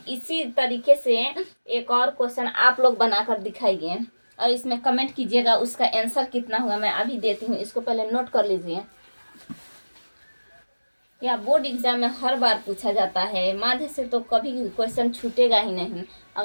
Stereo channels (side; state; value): both; inverted; correlation -1.00